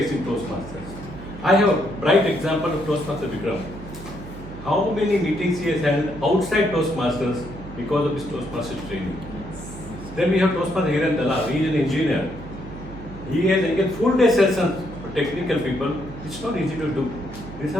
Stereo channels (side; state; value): right; noise; hum, 13 dB below the sound